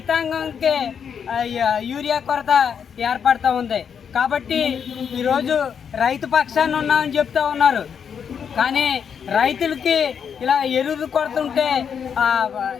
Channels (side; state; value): right; quieter; 7.3 dB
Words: యూరియా కొరత ఏర్పడుతూ ఉంది. కాబట్టి ఈరోజు రైతు పక్షాన్ని ఉన్నామని చెప్తూ ఉన్నారు. కానీ రైతులకి ఇలా ఎరువులు కొడుతుంటే